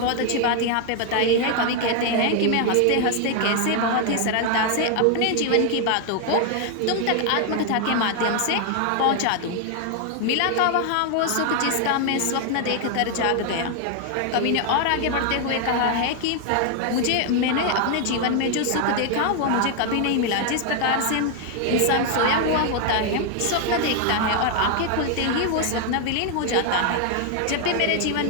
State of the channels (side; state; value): both; different; correlation 0.00